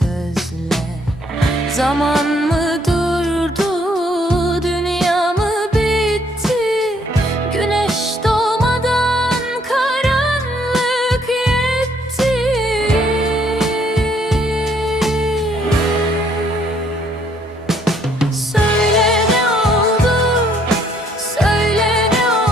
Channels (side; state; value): both; normal; correlation 0.67